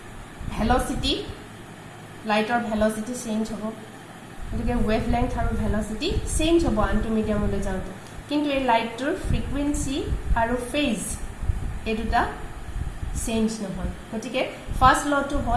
velocity lighter velocity change hobo gotike wavelength aru velocity change hobo antu medium ole jaute kintu ei light tur frequency aru phase eduta change no hoy gotike first law to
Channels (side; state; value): both; identical; correlation 1.00